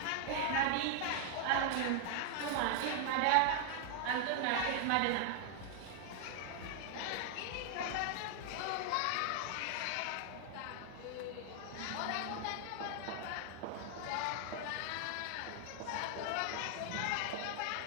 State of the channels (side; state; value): both; different; correlation 0.00